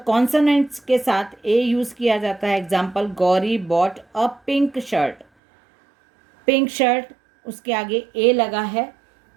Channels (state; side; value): drops out; left; at 5.2 s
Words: के साथ ए यूज़ किया जाता है. Example, Gauri bought a pink shirt. Pink shirt, उसके आगे ए लगा है,